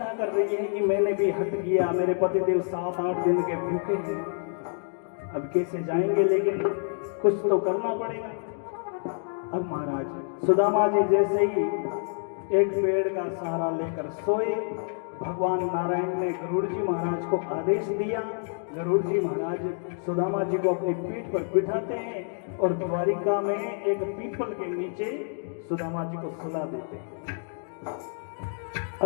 कर रही है कि मैंने भी हट किया, मेरे पतिदेव 7-8 दिन के भूखे हैं, अब कैसे जाएंगे, लेकिन कुछ तो करना पड़ेगा। अब महाराज सुदामा जी जैसे ही एक पेड़ का सहारा लेकर सोए, भगवान नारायण ने गरुड़ जी महाराज को आदेश दिया। गरुड़ जी महाराज सुदामा जी को अपनी पीठ पर बिठाते हैं और द्वारिका में एक पीपल के नीचे सुदामा जी को सुला देते हैं।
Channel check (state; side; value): silent; right; 60 dB below the other